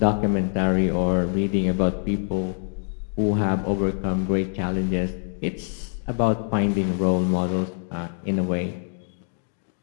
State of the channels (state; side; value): silent; right; 62 dB below the other